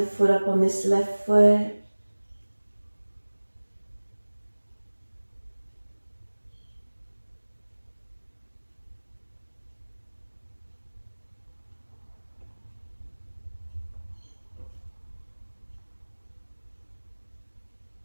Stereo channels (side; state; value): both; inverted; correlation -1.00